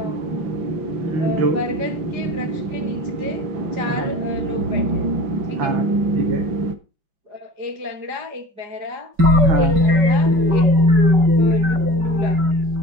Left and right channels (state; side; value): late; left; 5.3 ms